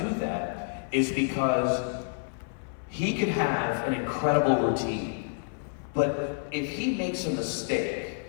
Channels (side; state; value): right; silent; 59 dB below the other